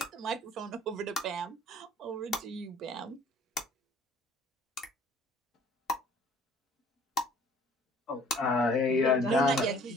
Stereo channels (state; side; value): normal; both; correlation 0.54